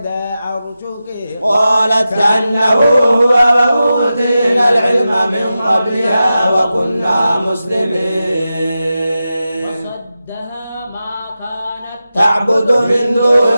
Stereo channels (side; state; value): both; inverted; correlation -0.92